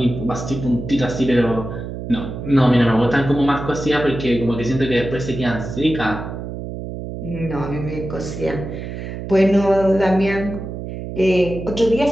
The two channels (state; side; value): noise; right; hum, 8 dB below the sound